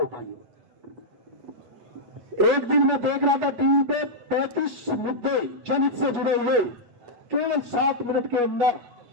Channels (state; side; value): late; left; 8.3 ms